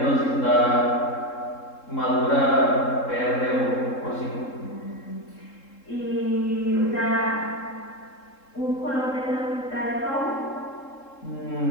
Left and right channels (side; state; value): right; late; 3.7 ms